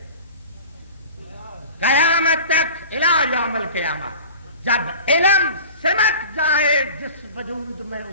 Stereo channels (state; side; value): inverted; both; correlation -0.40